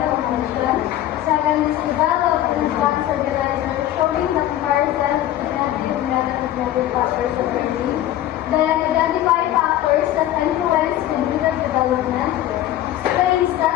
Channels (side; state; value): right; quieter; 13.2 dB